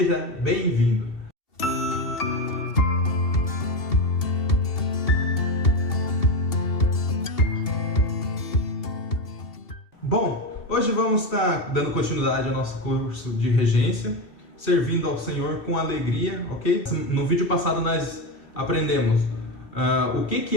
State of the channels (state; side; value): late; right; 2.7 ms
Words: bem-vindo! Bom, hoje vamos estar dando continuidade ao nosso curso de regência, servindo ao Senhor com alegria, ok? No vídeo passado nós aprendemos o que